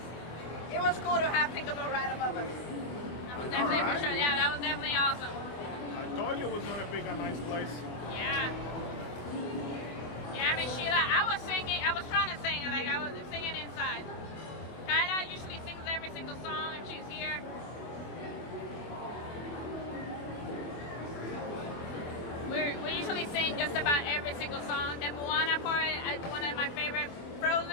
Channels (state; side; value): late; right; 24 ms